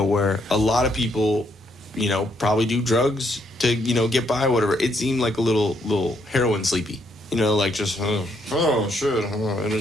A lot of people, probably do drugs to, get by, whatever. It seemed like a little heroin sleepy. Like just, oh shit, and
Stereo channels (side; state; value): both; normal; correlation 0.73